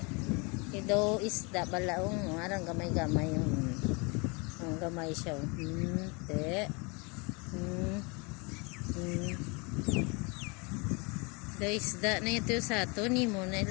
Ido isda balaong arang gamay-gamay yung gamay siya. Te. Do isda na ito sa ato ni mo na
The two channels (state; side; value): quieter; right; 30.0 dB